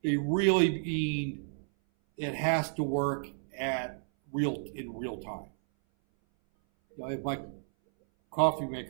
they really mean it has to work in real time. I have my coffee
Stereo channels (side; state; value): left; silent; 57 dB below the other